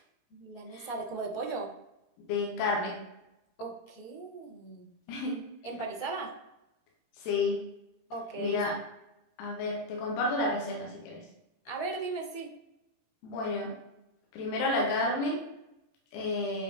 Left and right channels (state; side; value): late; right; 18 ms